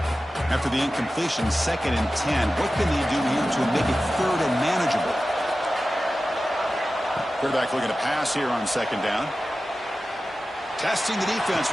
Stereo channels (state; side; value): normal; both; correlation 0.94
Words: After the incompletion, 2nd and 10. What can they do here to make it 3rd and manageable? Quarterback looking to pass here on 2nd down. Testing the defense